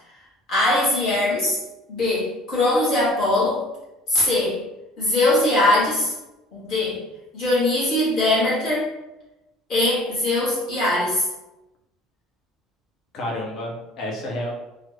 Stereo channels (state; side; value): normal; both; correlation 0.50